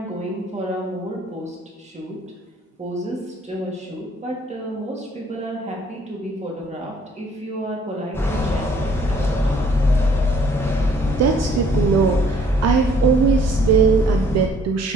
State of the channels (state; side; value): normal; both; correlation 0.60